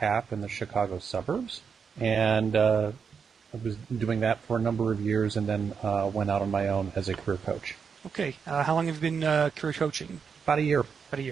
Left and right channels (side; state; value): left; quieter; 6.2 dB